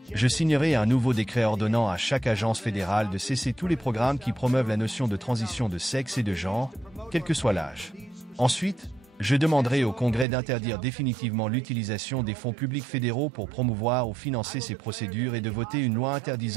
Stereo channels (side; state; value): left; drops out; at 10.2 s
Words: Je signerai un nouveau décret ordonnant à chaque agence fédérale de cesser tous les programmes qui promeuvent la notion de transition de sexe et de genre, quel que soit l'âge. Ensuite, je demanderai au Congrès d'interdire définitivement l'utilisation des fonds publics fédéraux pour promouvoir ou financer ces procédures et de voter une loi